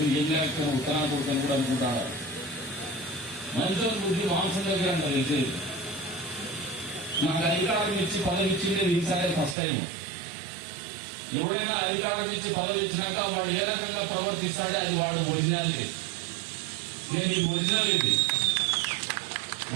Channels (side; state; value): left; drops out; at 9.6 s